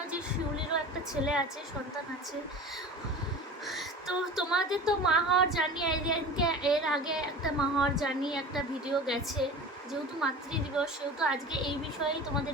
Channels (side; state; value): both; normal; correlation 0.36